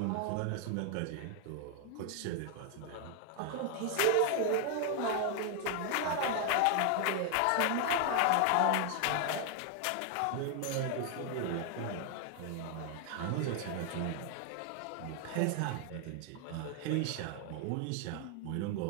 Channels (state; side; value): different; both; correlation 0.00